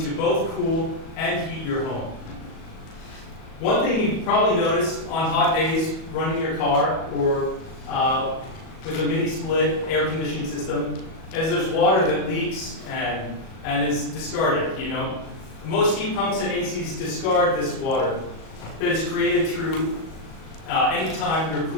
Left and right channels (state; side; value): late; right; 37 ms